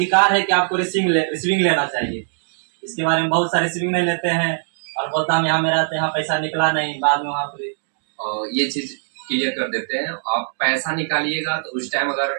है कि आपको रिसीविंग लेना चाहिए। इसके बारे में बहुत सारे रिसीविंग नहीं लेते हैं और बोलता हम यहाँ मेरा तो यहाँ पैसा निकला नहीं, बाद में वहाँ पर ये चीज क्लियर कर देते हैं। आप पैसा निकालिएगा तो उस टाइम अगर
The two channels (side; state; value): left; silent; digital silence